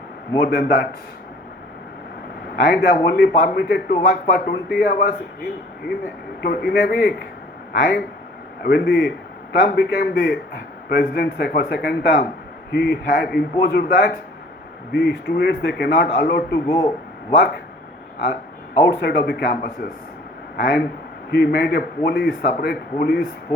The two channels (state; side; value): normal; both; correlation 0.52